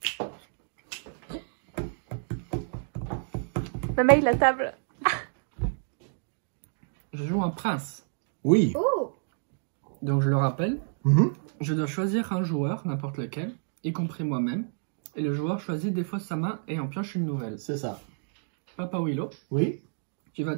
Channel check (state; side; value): silent; left; digital silence